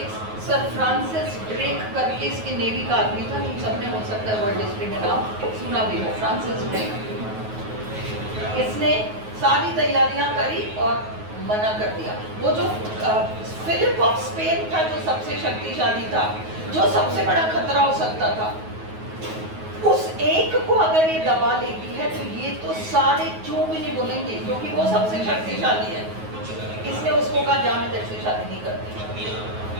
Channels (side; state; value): left; late; 9.4 ms